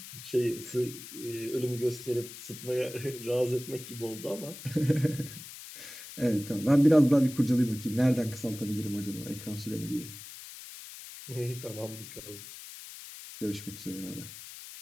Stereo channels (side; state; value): left; noise; hiss, 13 dB below the sound